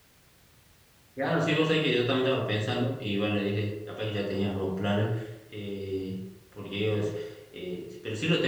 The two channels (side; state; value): both; identical; correlation 1.00